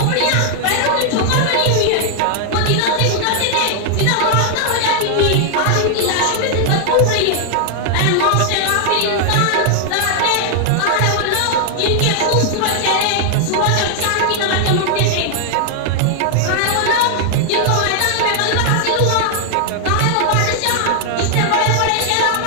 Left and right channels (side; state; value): both; different; correlation 0.00